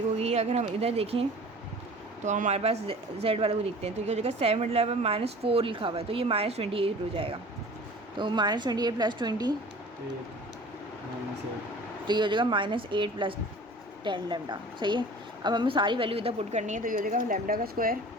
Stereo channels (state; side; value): normal; both; correlation 0.43